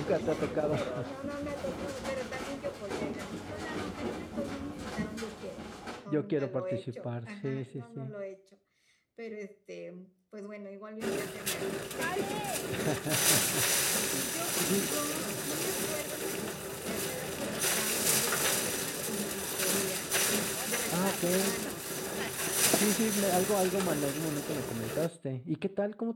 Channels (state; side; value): identical; both; correlation 1.00